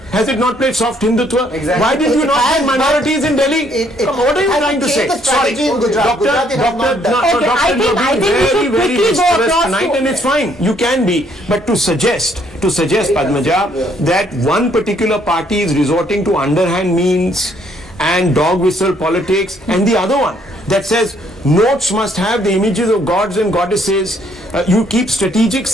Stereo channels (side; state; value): both; normal; correlation 0.67